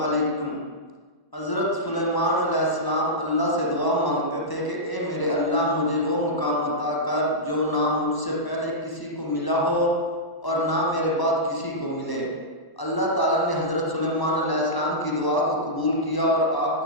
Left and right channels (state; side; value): late; right; 1.0 ms